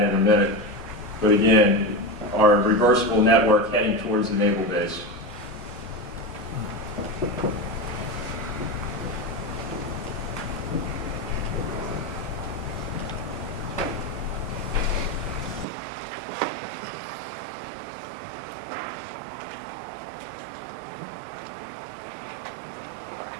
in a minute. But again, our reversible network heading towards the naval base.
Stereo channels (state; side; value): drops out; left; at 15.7 s